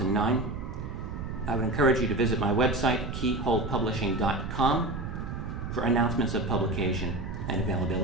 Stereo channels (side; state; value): right; noise; rumble, 7 dB below the sound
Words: I would encourage you to visit my website, keyholepublishing.com, for announcements of publication and